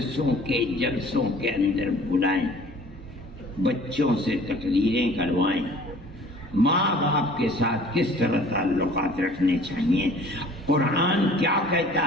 کے جلسوں کے اندر بلائیں، بچوں سے تقریریں کروائیں، ماں باپ کے ساتھ کس طرح تعلقات رکھنے چاہیے، قرآن کیا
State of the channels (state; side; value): normal; both; correlation 0.50